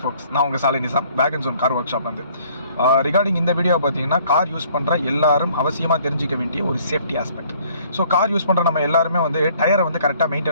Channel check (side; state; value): both; inverted; correlation -0.59